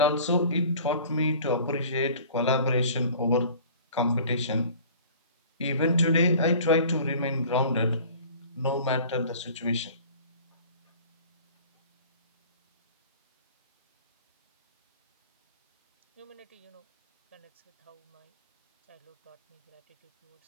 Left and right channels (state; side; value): inverted; both; correlation -0.46